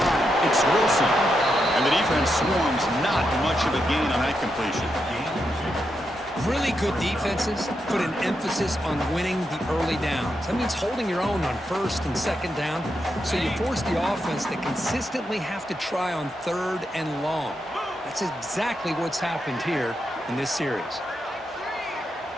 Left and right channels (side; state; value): both; normal; correlation 0.84